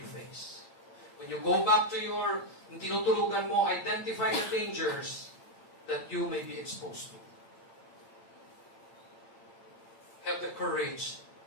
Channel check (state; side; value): late; right; 8.8 ms